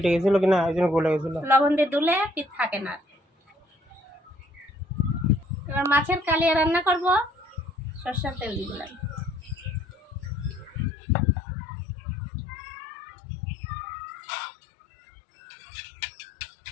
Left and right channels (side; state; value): right; drops out; at 10.9 s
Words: গেছিল কিনা এই জন্য গলে গেছিল। লবণ দিয়ে ধুলে পিস থাকে না। এবার মাছের কালিয়া রান্না করব, সরষের তেল দিয়ে দিলাম।